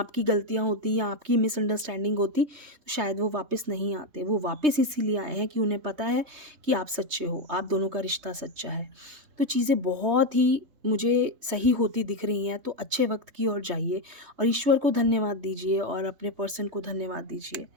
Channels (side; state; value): left; late; 3.2 ms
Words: गलतियां होती या आपकी मिसअंडरस्टैंडिंग होती, तो शायद वो वापस नहीं आते। वो वापस इसीलिए आए हैं कि उन्हें पता है कि आप सच्चे हो, आप दोनों का रिश्ता सच्चा है। तो चीज़ें बहुत ही मुझे सही होती दिख रही हैं। तो अच्छे वक्त की ओर जाइए, और ईश्वर को धन्यवाद दीजिए, और अपने पर्सन को धन्यवाद दीजिए।